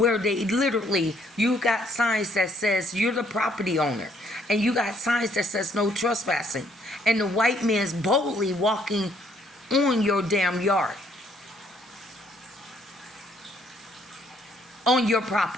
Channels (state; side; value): normal; both; correlation 0.67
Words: they literally, you got signs that says you're the property owner, and you got signs that says no trespassing, and the white man's boldly walking on your damn yard, on your